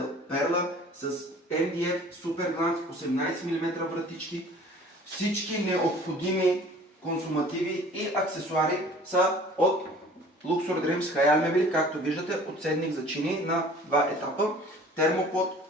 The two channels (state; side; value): normal; both; correlation 0.48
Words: Перла с MDF Super Glance 18 мм вратички. Всички необходими консумативи и аксесуари са от Luxor Dreams Хаял мебели, както виждате, подседник за чини на два етапа, термопод,